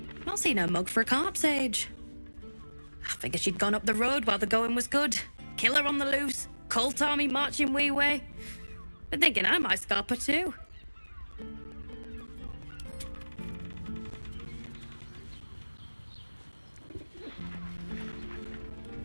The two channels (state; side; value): inverted; both; correlation -1.00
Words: Not seen her mug for a carp's age. I figured she'd gone up the road while the going was good. Killer on the loose, cult army marching wee way. Been thinking I might scalp her too.